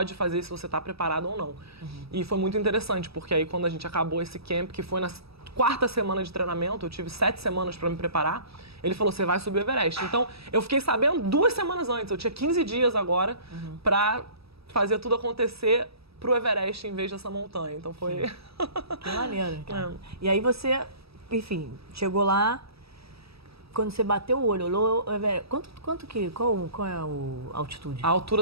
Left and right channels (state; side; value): late; left; 0.77 ms